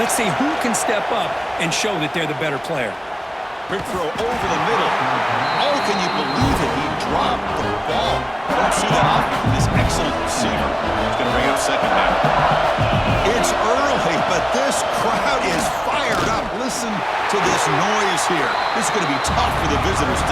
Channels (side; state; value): both; identical; correlation 1.00